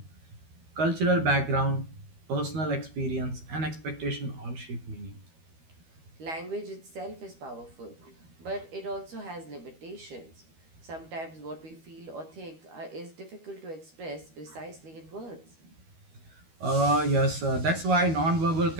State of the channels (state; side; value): late; left; 13 ms